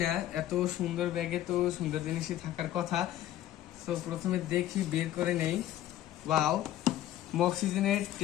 না, এত সুন্দর ব্যাগে তো সুন্দর জিনিসই থাকার কথা। তো প্রথমে দেখি, বের করে নেই। ওয়াও, মক্সিজেনের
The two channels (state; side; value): quieter; right; 12.9 dB